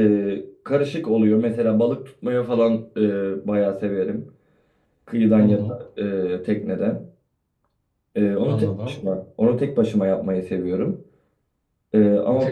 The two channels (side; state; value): both; identical; correlation 1.00